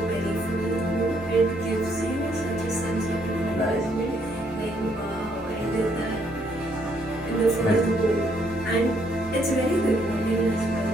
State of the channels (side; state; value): left; noise; hum, 19 dB below the sound